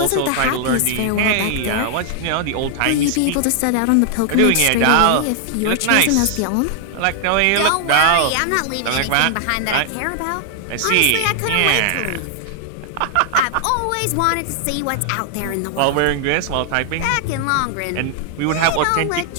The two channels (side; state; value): both; different; correlation 0.00